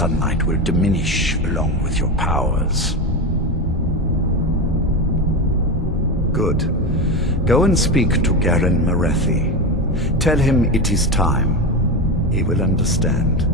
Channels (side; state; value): both; normal; correlation 0.18